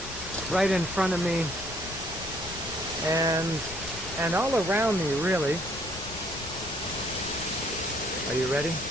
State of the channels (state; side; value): noise; left; rumble, 13 dB below the sound